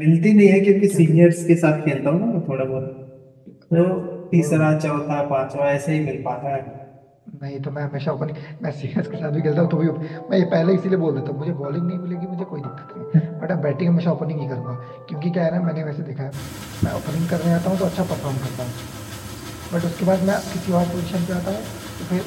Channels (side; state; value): both; identical; correlation 1.00